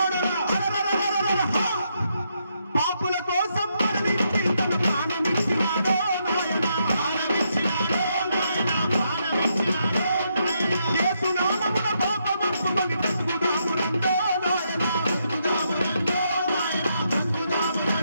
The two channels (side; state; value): both; inverted; correlation -0.78